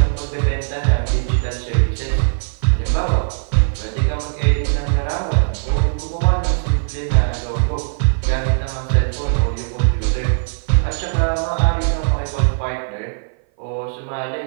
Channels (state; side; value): silent; left; 58 dB below the other